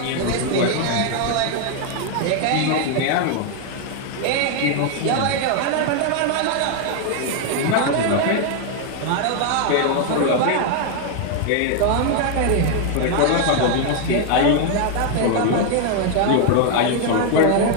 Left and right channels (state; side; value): different; both; correlation 0.00